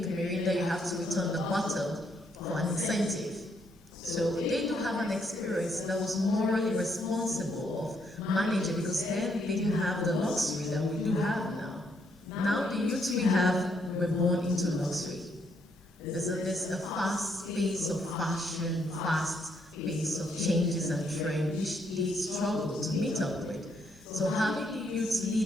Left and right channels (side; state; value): both; normal; correlation 0.74